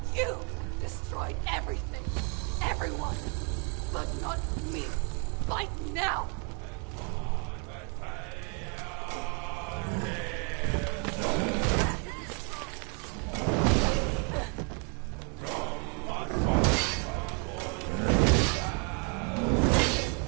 You destroyed everything, everyone, but not me. Fight now!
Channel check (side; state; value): left; quieter; 37.3 dB